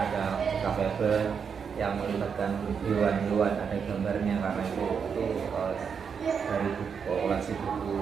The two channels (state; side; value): quieter; left; 6.5 dB